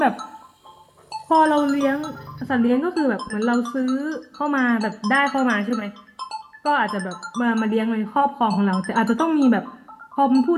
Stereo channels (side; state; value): both; identical; correlation 1.00